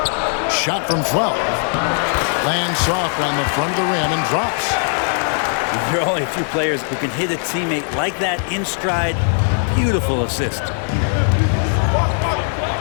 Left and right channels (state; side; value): silent; right; 57 dB below the other